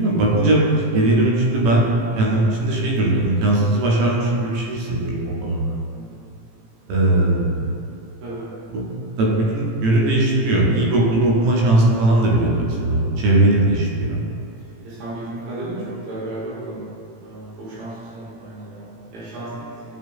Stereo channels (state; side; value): late; left; 18 ms